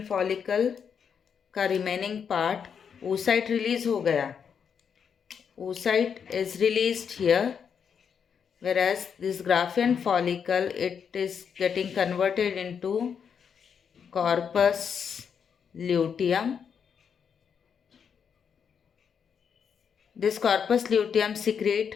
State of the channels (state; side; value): quieter; right; 7.1 dB